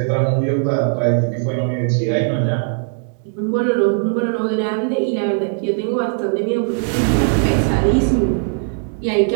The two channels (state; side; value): silent; left; 60 dB below the other